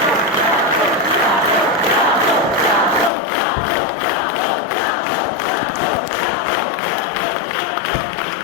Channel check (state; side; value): drops out; right; at 3.1 s